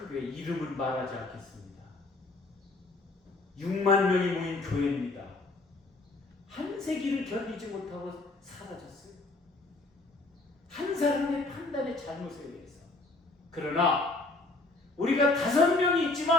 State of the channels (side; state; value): right; quieter; 3.2 dB